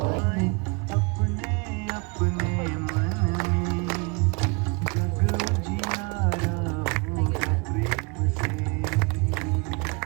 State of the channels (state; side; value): quieter; left; 29.9 dB